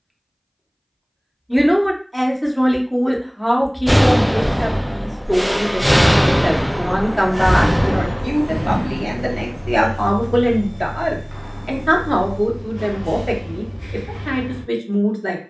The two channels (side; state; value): both; identical; correlation 1.00